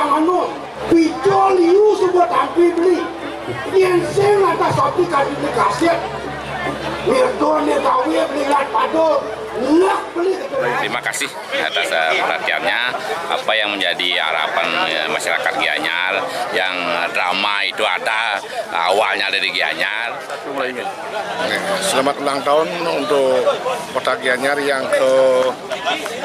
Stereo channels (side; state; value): both; identical; correlation 1.00